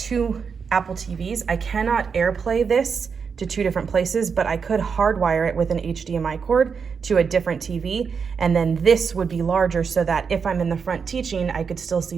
Apple TVs, I cannot AirPlay this to 2 different places, but I could hardwire it with an HDMI cord to a different TV, and then this would be larger so that if I'm in the front teaching, I could still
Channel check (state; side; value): quieter; left; 6.0 dB